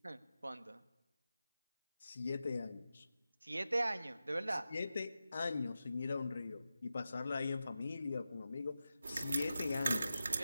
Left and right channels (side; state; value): both; inverted; correlation -0.92